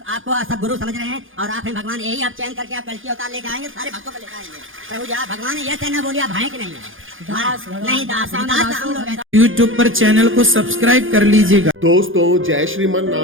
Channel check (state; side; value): late; left; 0.58 ms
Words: आपको सब गुरु समझ रहे हैं और आप हैं भगवान। यही आप चयन करके आप कल की अवतार लेके आएंगे, सारे भक्तों को लेकर आएंगे प्रभु जी। आप भगवान है, यह कहना बोलिए आप हैं कि नहीं है? दास नहीं, दास हम लोग हैं। YouTube पर चैनल को सब्सक्राइब कर लीजिएगा। दोस्तों, जय श्रीमन